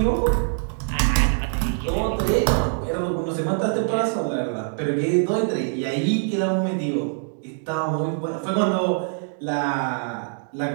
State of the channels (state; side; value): silent; left; digital silence